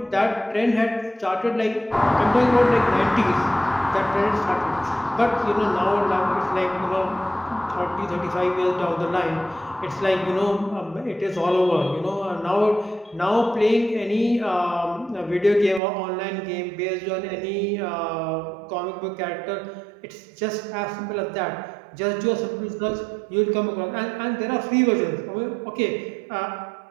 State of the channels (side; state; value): left; drops out; at 15.8 s